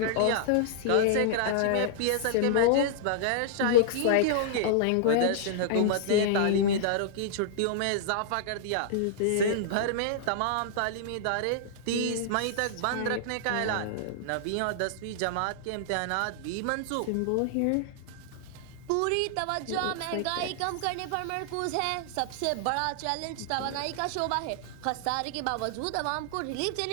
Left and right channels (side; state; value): both; different; correlation -0.01